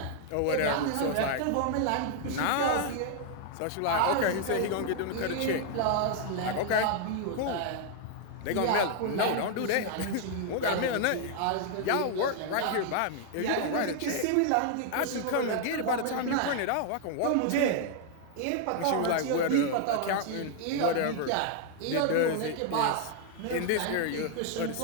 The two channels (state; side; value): different; both; correlation 0.00